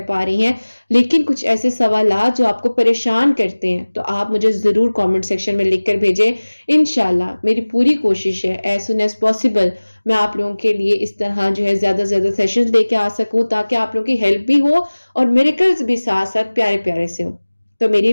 پا رہی ہیں، لیکن کچھ ایسے سوالات جو آپ کو پریشان کرتے ہیں، تو آپ مجھے ضرور کامنٹ سیکشن میں لکھ کر بھیجیں۔ انشاءاللہ میری پوری کوشش ہے ایز سون ایز پاسبل میں آپ لوگوں کے لیے اس طرح جو ہے زیادہ سے زیادہ سیشنز لے کے آ سکوں، تاکہ آپ لوگوں کی ہیلپ بھی ہو اور میریکلز بھی ساتھ ساتھ پیارے پیارے سے ہوں۔ تو میری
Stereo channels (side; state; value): both; inverted; correlation -1.00